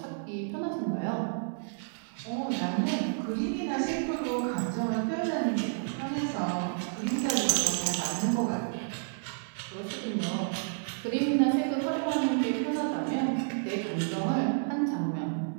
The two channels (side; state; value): left; silent; 57 dB below the other